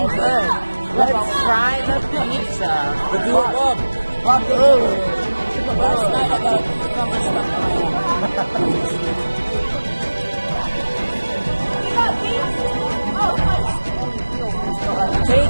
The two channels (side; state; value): both; inverted; correlation -1.00